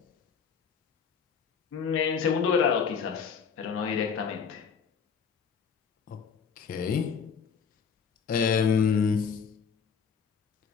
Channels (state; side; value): quieter; right; 6.4 dB